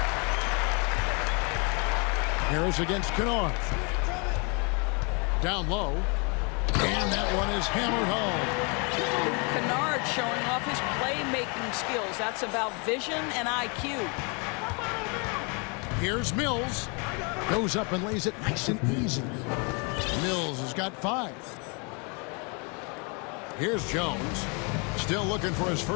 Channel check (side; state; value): right; quieter; 33.5 dB